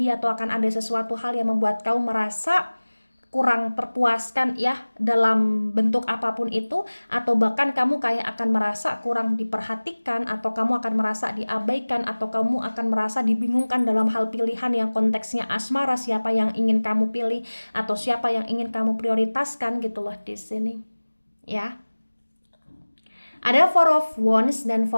atau akan ada sesuatu hal yang membuat kamu merasa kurang terpuaskan ya dalam bentuk apapun itu, atau bahkan kamu kayak akan merasa kurang diperhatikan, atau kamu akan merasa diabaikan, atau kamu akan merasa dibingungkan dalam hal pilihan yang konteksnya asmara, siapa yang ingin kamu pilih atau siapa yang ingin kamu prioritaskan gitu loh di sini ya. Ada Four of Wands dan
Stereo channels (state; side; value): inverted; both; correlation -1.00